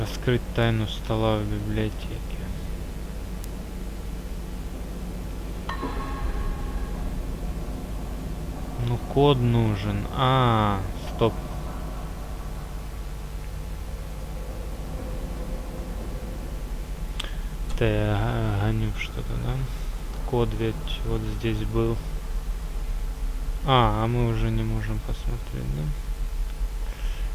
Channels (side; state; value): both; identical; correlation 1.00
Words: тайну стола в библиотеке. Ну, код нужен. А, стоп. Да, я гоню что-то, да? Код ведь вот здесь был. А мы уже не можем посмотреть,